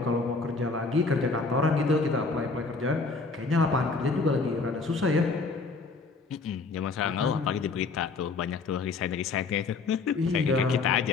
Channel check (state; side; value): quieter; right; 4.1 dB